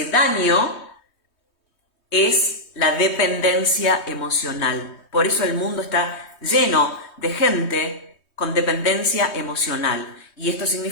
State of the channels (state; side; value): late; right; 3.2 ms